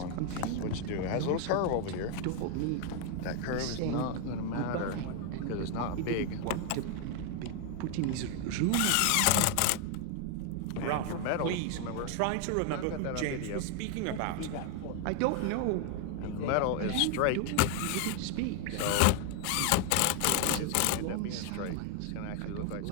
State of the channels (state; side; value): different; both; correlation 0.01